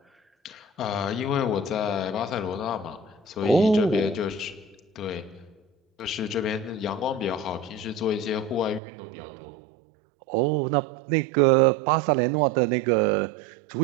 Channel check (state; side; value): drops out; left; at 8.8 s